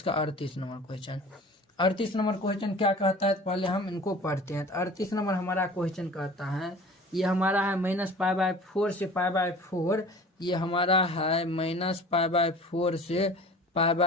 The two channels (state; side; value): normal; both; correlation 0.42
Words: 38 नंबर क्वेश्चन। 38 नंबर क्वेश्चन क्या कहता है, तो पहले हम इनको पढ़ते हैं। तो 38 नंबर हमारा क्वेश्चन कहता है, ये हमारा है -π/4 से π/4, ये हमारा है -π/4 से